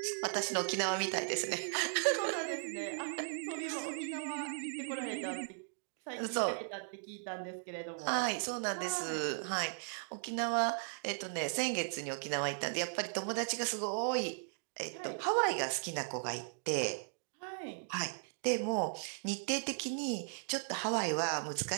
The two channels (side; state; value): left; silent; digital silence